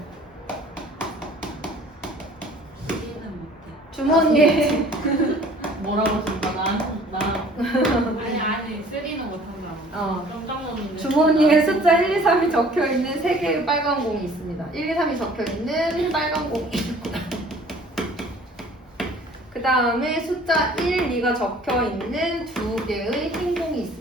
주머니에 뭐라고 했습니까? 아니 쓰리는 못한다. 깜짝 놀랐는데. 주머니에 숫자 1, 2, 3이 적혀 있는 3개의 빨간 공이 있습니다. 1, 2, 3이 적혀 있는 빨간 공이 있고 그 다음에 숫자 1, 2가 적혀 있는 2개의 흰 공이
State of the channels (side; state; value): both; normal; correlation 0.52